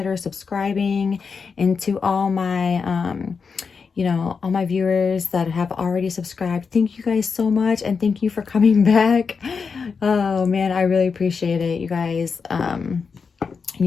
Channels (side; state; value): right; quieter; 5.4 dB